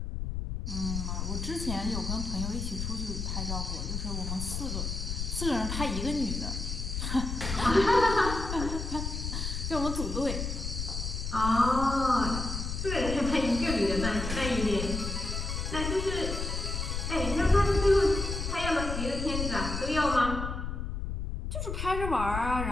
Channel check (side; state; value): left; noise; rumble, 4 dB below the sound